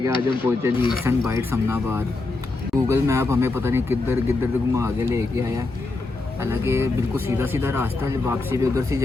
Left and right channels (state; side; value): quieter; right; 3.4 dB